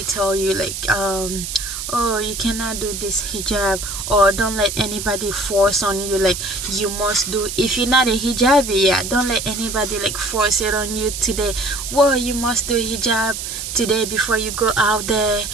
tell you like oh, you cannot do this hijab, or don't let anybody force on you like you must do. If you're not a hijabi, yeah, don't let anybody like force it on you today. Well, you must do hijab today before you go out there.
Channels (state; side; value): noise; right; hiss, 6 dB below the sound